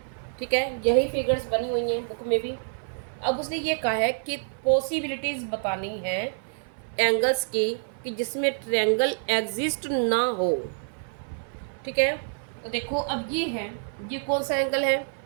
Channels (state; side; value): silent; left; 56 dB below the other